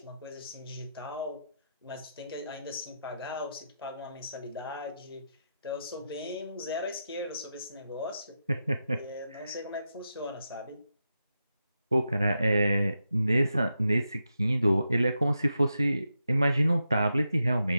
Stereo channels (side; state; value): both; inverted; correlation -0.87